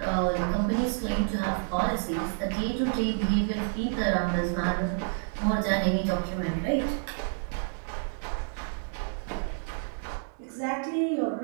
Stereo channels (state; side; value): silent; left; digital silence